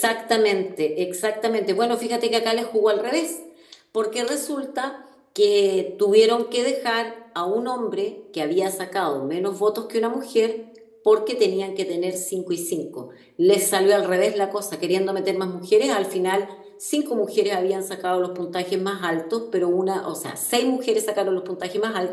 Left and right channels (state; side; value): identical; both; correlation 1.00